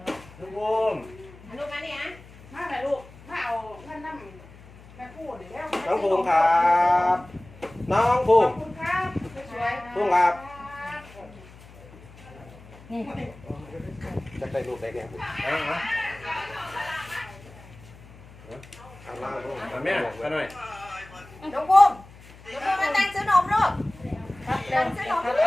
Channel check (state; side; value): noise; left; hum, 21 dB below the sound